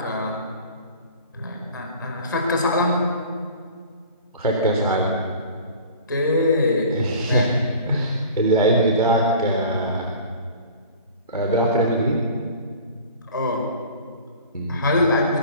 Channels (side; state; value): both; inverted; correlation -0.43